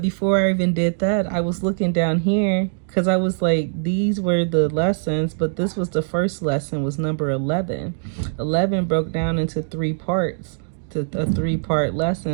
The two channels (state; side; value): silent; left; digital silence